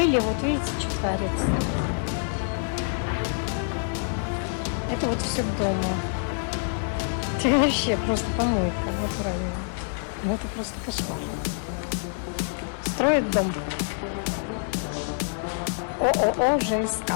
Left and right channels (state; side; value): silent; right; 61 dB below the other